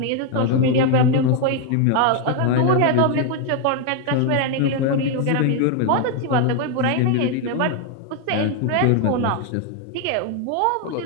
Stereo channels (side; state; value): both; different; correlation 0.01